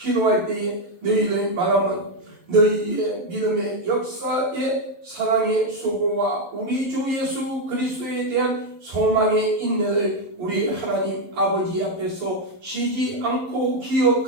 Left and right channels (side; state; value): left; late; 11 ms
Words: 때에 너희를 말하면 너희의 믿음의 역사의 사랑의 수고와 우리 주 예수 그리스도에 대한 소망의 인내를 우리 하나님 아버지 앞에서 쉬지 않고